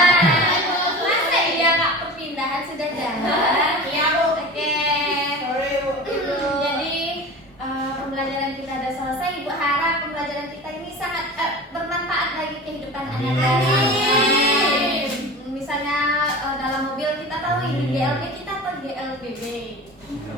Masa iya Kak perpindahan sudah jalan? Iya, Bu. Oke. Sorry, Bu. Jadi pembelajaran kita sudah selesai. Ibu harap pembelajaran kita ini sangat bermanfaat bagi kehidupan Anda. Misalnya dalam mobil kita tahu ini GLB kita atau GLBB.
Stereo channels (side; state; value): both; normal; correlation 0.34